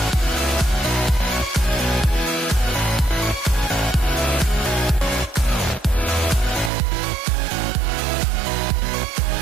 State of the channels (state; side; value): drops out; left; at 6.7 s